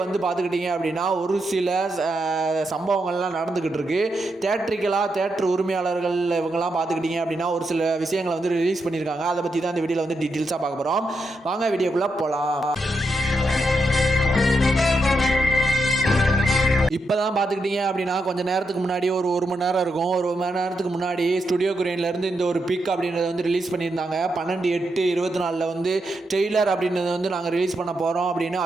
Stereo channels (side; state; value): both; normal; correlation 0.83